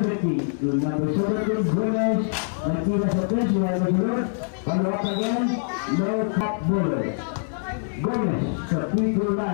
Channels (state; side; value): silent; right; digital silence